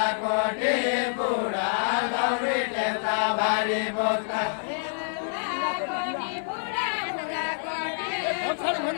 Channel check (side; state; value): right; silent; 56 dB below the other